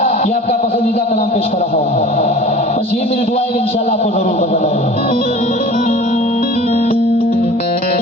ये आपका पसंदीदा कलाम पेश कर रहा हूँ। बस ये मेरी दुआ है कि इंशाल्लाह आपको जरूर पसंद आएगा।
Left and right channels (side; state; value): both; normal; correlation 0.42